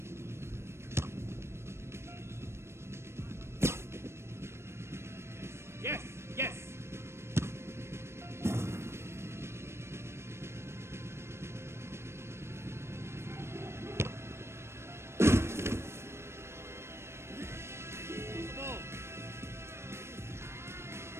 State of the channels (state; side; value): late; left; 0.13 ms